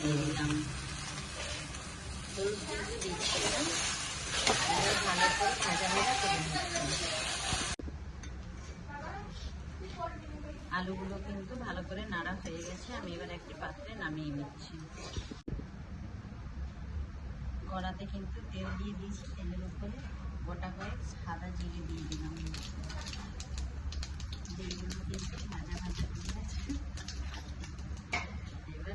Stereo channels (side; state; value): both; identical; correlation 1.00